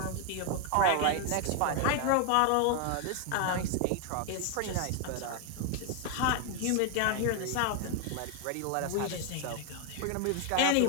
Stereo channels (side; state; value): both; different; correlation 0.00